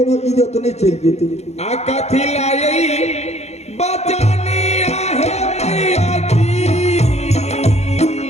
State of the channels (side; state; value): right; late; 0.31 ms